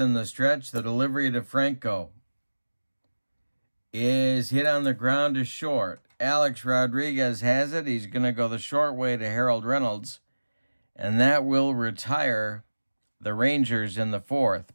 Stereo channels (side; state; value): both; inverted; correlation -1.00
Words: the stretch. The delivery to Franco is hit on the ground to short. Alex Rodriguez has it. He's going to go the short way to Harold Reynolds. And that will retire the Rangers in the 4th.